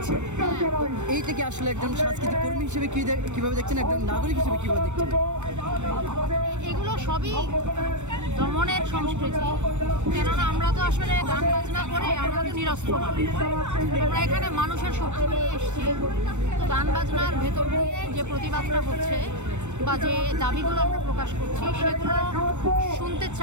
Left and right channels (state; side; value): late; left; 0.84 ms